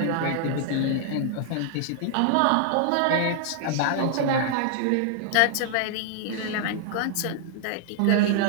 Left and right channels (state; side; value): different; both; correlation 0.00